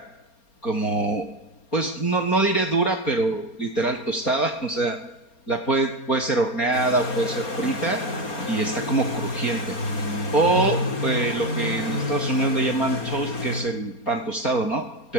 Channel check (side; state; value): right; late; 4.3 ms